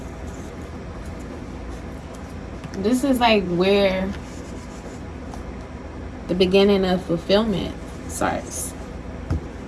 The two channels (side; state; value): both; identical; correlation 1.00